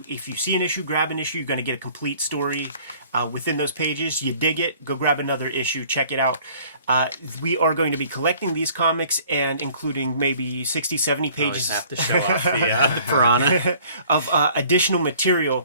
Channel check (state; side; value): inverted; both; correlation -0.54